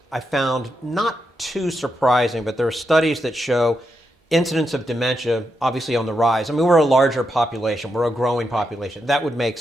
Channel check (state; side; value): normal; both; correlation 0.84